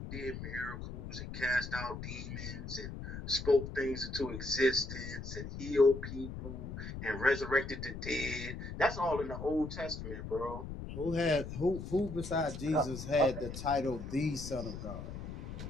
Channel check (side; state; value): left; noise; rumble, 8 dB below the sound